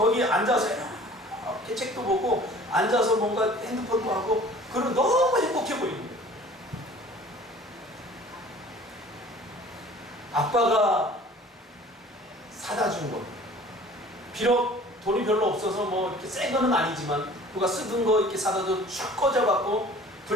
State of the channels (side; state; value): both; normal; correlation 0.47